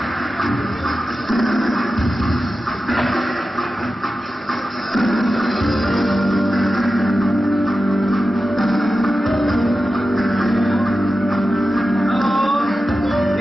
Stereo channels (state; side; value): normal; both; correlation 0.93